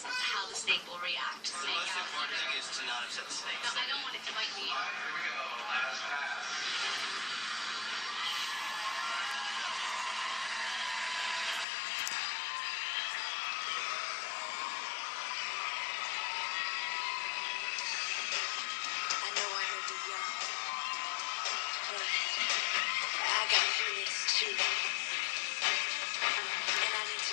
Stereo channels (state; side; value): drops out; right; at 11.7 s